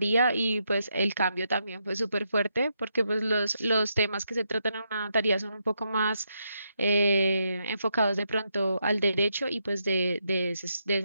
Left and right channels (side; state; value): both; inverted; correlation -0.80